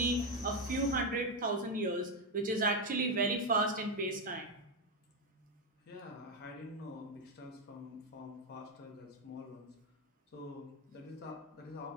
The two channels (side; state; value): both; normal; correlation 0.06